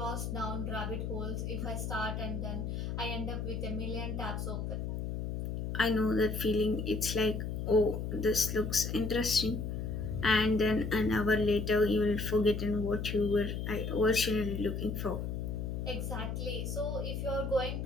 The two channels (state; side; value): noise; left; hum, 3 dB below the sound